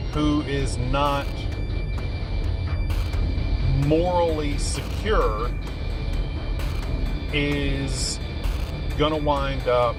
who is not morally secure is going to wind up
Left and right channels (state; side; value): identical; both; correlation 1.00